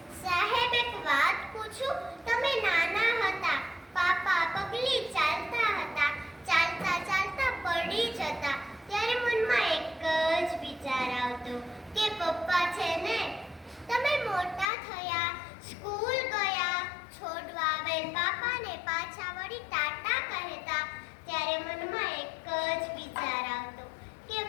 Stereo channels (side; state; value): right; drops out; at 14.7 s